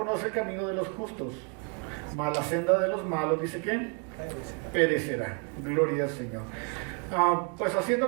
el camino de los justos, mas la senda de los malos, dice que perecerá. Gloria al Señor. Pues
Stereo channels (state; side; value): quieter; left; 33.7 dB